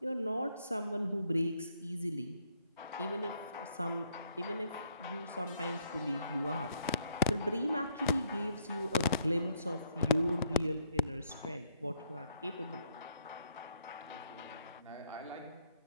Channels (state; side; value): inverted; both; correlation -0.70